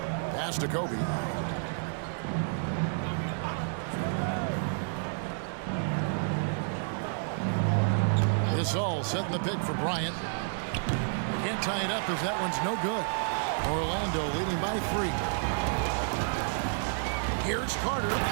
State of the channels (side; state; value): left; silent; digital silence